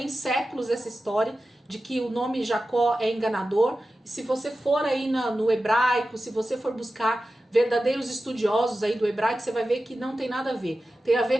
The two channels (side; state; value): both; normal; correlation 0.93